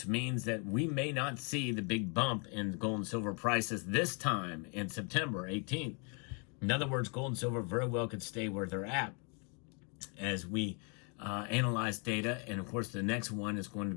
means that we may not see the big bump in gold and silver prices this time in September 18th. In other words, gold and silver very well could stay where they're at as we analyze data. And of course, the next one is going to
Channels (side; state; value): right; quieter; 36.5 dB